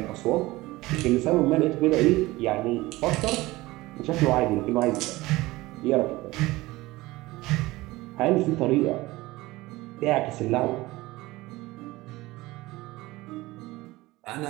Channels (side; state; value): left; quieter; 19.5 dB